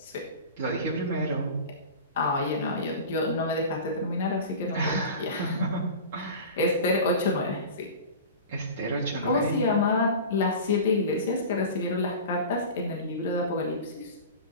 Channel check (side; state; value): both; inverted; correlation -0.33